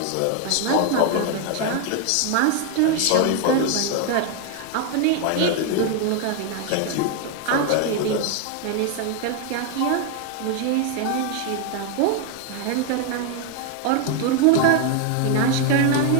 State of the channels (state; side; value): different; both; correlation 0.01